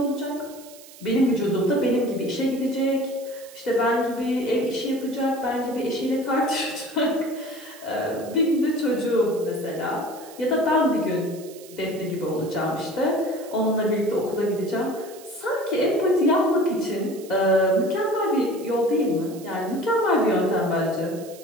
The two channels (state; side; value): noise; right; hiss, 20 dB below the sound